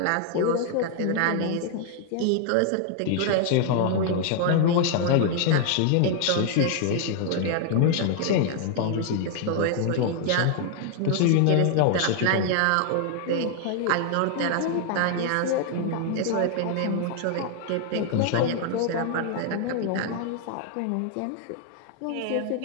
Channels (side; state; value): both; different; correlation 0.00